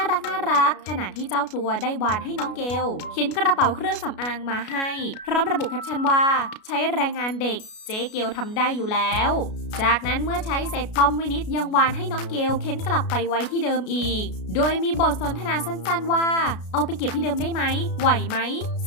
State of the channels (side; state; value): right; late; 33 ms